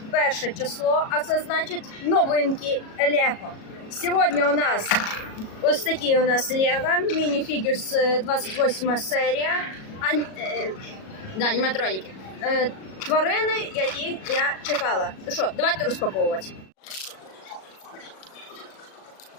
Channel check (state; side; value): late; right; 37 ms